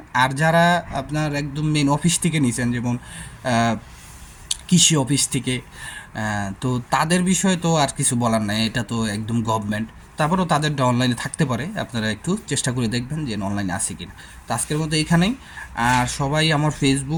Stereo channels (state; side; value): identical; both; correlation 1.00